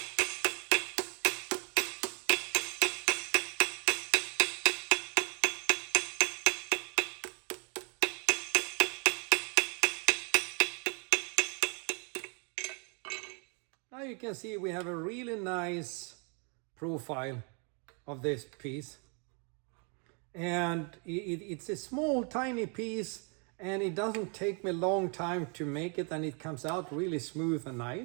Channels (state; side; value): quieter; left; 37.1 dB